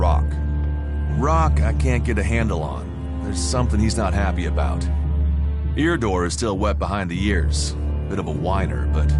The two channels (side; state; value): both; identical; correlation 1.00